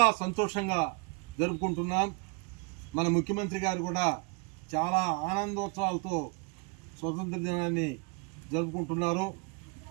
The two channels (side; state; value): left; quieter; 30.8 dB